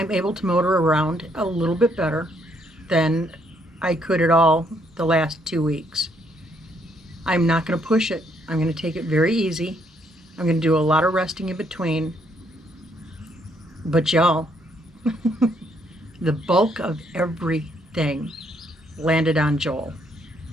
able to motor around a little bit better than I could at all the last 2 weeks. I'm not going to push it. I'm going to take it very easy. I'm going to do a lot of resting in between. But y'all, the bulk of everything landed on Joel.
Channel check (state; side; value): normal; both; correlation 0.71